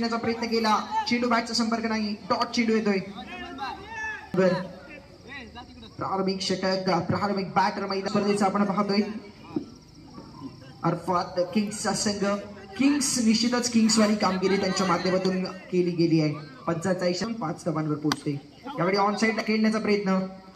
प्रयत्न केला चेंडू बॅटचा संपर्क नाही डॉट चेंडू येतोय प्रारंभिक षटक प्रारंभिक बॅटर मैदान स्पर्धेचा आपण पाहतोय अर्थात किंग्सचा संघ किंग्स निश्चितच किंग्स वाली कामगिरी त्यांच्या माध्यमातून केली गेली आहे 45 धावांवर पोहोचते यावेळी ऑन साइडला खेळण्याचा प्रयत्न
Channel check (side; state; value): both; identical; correlation 1.00